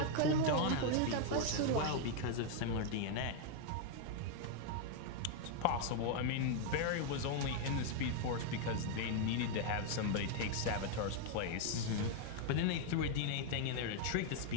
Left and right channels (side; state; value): both; different; correlation 0.00